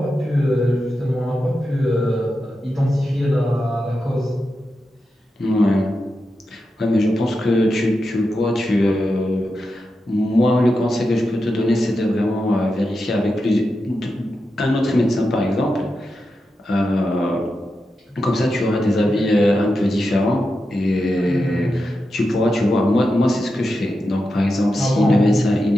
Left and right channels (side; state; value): both; normal; correlation 0.89